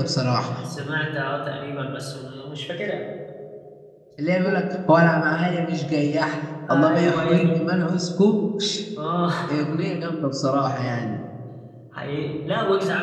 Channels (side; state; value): both; identical; correlation 1.00